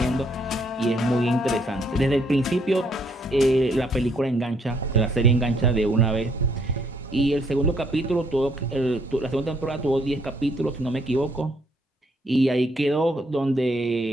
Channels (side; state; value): both; normal; correlation 0.69